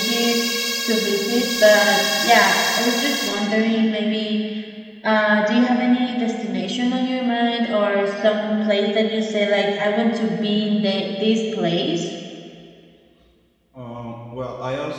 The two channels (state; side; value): identical; both; correlation 1.00